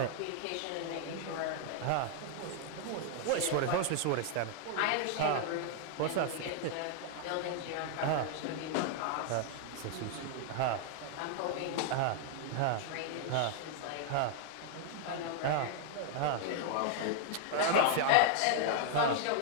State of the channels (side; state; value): both; different; correlation 0.00